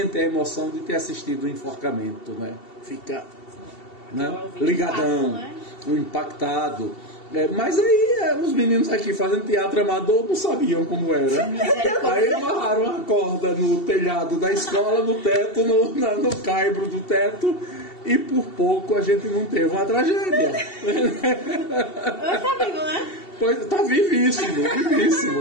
a emoção de ter assistido o enforcamento, né? Fica, né? Ligadão, impactado. Mas aí os meninos aqui fazendo teatro amador não sabiam como era. Aí amarraram a corda no telhado da escola, no teto, no caibro do teto, e por pouco a gente não teve uma tragédia. Tá vivo, né? Pois, tá vivíssimo,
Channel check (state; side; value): late; right; 2.7 ms